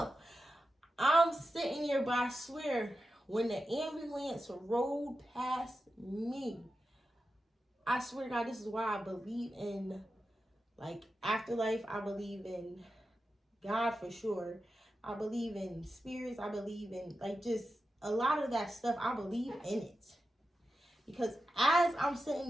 I'm sitting here, but I swear, when the ambulance rolled past me, I swear to God, this is why I believe in, like, afterlife. I believe in God for sure. I believe in spirits. I believe in, like, just a lot of that stuff. I believe in it. Because as I'm sitting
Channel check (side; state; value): both; normal; correlation 0.91